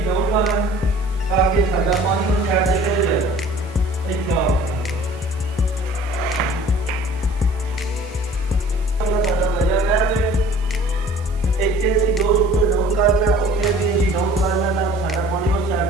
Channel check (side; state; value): right; noise; hiss, 26 dB below the sound